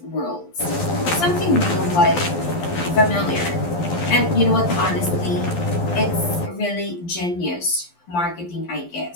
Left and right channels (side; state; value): right; late; 12 ms